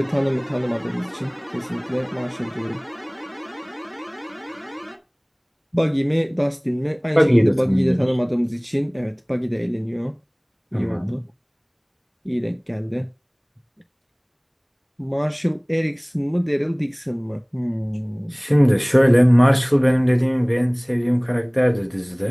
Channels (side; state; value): both; identical; correlation 1.00